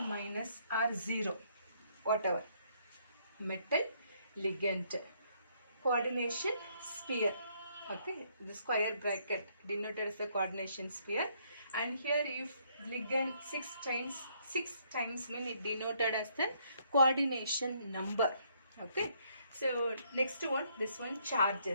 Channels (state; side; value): inverted; both; correlation -0.69